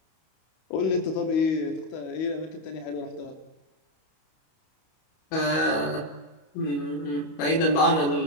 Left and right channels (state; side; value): late; right; 32 ms